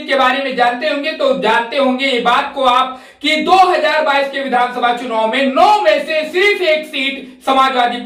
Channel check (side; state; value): both; identical; correlation 1.00